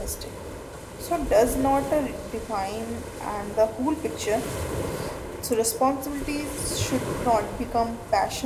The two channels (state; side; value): identical; both; correlation 1.00